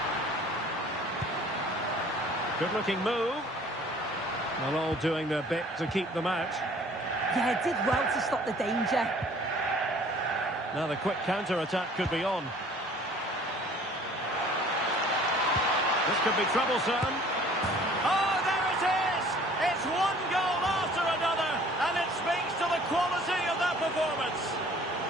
Good-looking move. They're all doing their bit to keep them out. Yeah, did well to stop the danger. Now the quick counter-attack could be on. This could be troublesome. Oh, there it is! It's one goal after another, and it speaks to the quality of that performance.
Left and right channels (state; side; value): normal; both; correlation 0.52